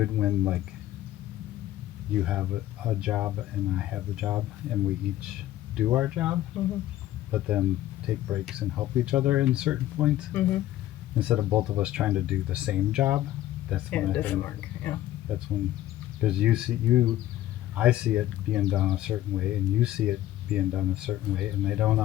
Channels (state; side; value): quieter; right; 14.2 dB